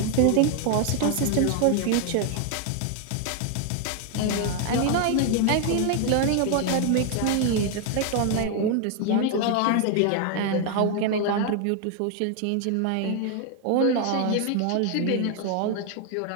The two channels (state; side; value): different; both; correlation 0.00